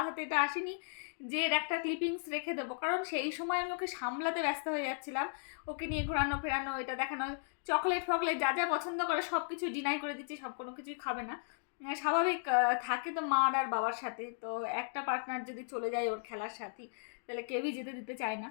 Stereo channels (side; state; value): right; silent; digital silence